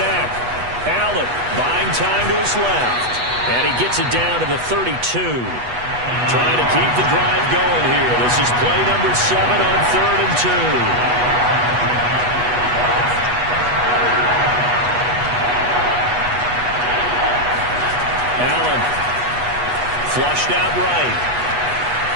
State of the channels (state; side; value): late; left; 8.2 ms